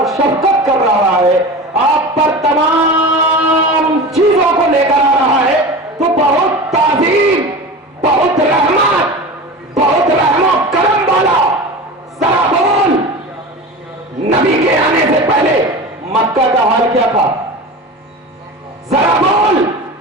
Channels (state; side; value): normal; both; correlation 0.30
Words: شفقت کر رہا ہے, آپ پر تمام چیزوں کو لے کر آ رہا ہے, تو بہت تعظیم, بہت رحمت, بہت رحم و کرم والا. ذرا بول, نبی کے آنے سے پہلے مکہ کا حال کیا تھا؟ ذرا بول,